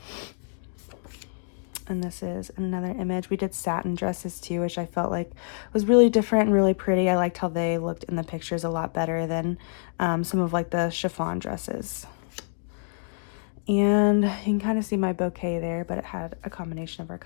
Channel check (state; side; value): silent; right; digital silence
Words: And this is another image. We did satin dresses too, which I felt like was really different and really pretty. I liked how they looked in the pictures a lot better than some of like the chiffon dresses. And you can kind of see my bouquet there, but it had a combination of our